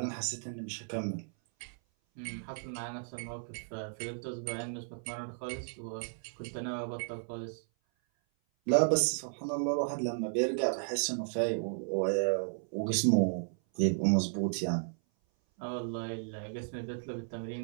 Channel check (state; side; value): silent; left; 55 dB below the other